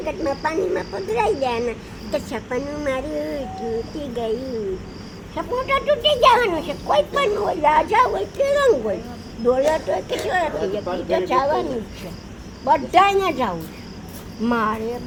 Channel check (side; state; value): both; identical; correlation 1.00